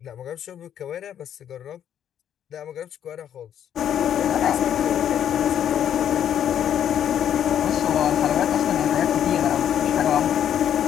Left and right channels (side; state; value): right; quieter; 9.7 dB